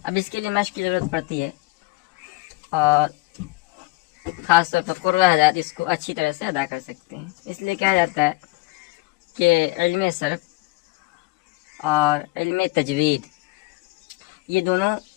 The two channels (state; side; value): quieter; right; 22.9 dB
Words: اب اس کے لیے مشق کی ضرورت پڑتی ہے، اور خاص طور پر قرہ حضرات اس کو اچھی طرح سے ادا کر سکتے ہیں۔ اس لیے کہا جاتا ہے کہ علم صرف اور علم تجوید یہ دونوں